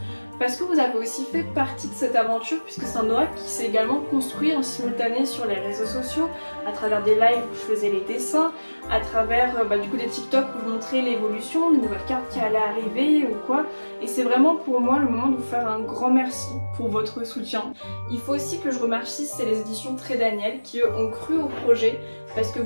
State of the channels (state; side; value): inverted; both; correlation -1.00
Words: parce que vous avez aussi fait partie de cette aventure puisque c'est un oracle qui s'est également construit en simultané sur les réseaux sociaux, à travers des lives où je faisais les dessins, à travers du coup des TikTok où je montrais l'évolution, les nouvelles cartes qui allaient arriver ou quoi. Et c'est vraiment pour moi le moment de vous faire un grand merci pour votre soutien. Il faut aussi que je remercie les éditions Très Daniel qui ont cru au projet. Parce que